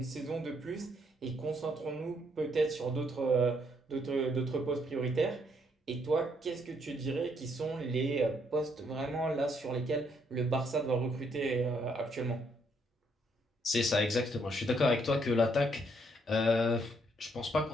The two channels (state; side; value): normal; both; correlation 0.72